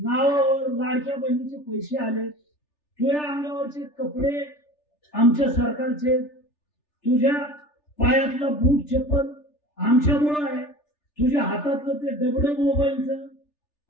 लाडक्या बहिणीचे पैसे आले. तुझ्या अंगावरचे कपडे आमच्या सरकारचे, तुझ्या पायातला बूट चप्पल आमच्यामुळं आहे, तुझ्या हातातलं ते डबडं मोबाईलचं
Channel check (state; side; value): late; right; 3.4 ms